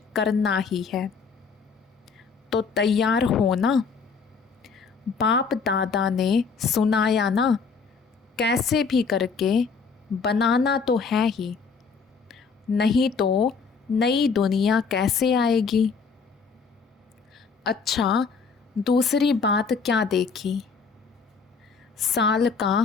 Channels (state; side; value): quieter; right; 5.3 dB